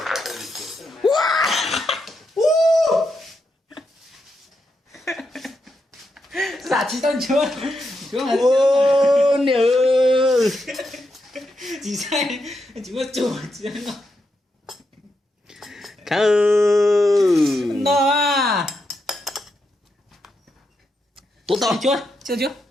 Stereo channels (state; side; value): normal; both; correlation 0.84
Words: giả chỉ tao chưa Nhớ. chỉ sai chỉ có chủ chỉ nó Khâu. nó à tụt to chưa